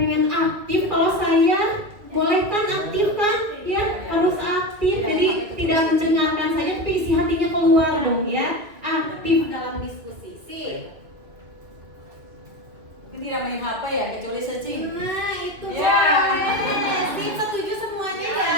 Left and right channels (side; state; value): left; late; 2.3 ms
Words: aktif, kalau saya boleh kan aktif kan? Ya, harus aktif. Jadi tidak mendengarkan saja, tapi isi hatinya keluar dong ya. Aktif dalam diskusi. Sip. Mungkin tidak main HP ya, kecuali searching. Nah, itu Ya. boleh. Sip, setuju semuanya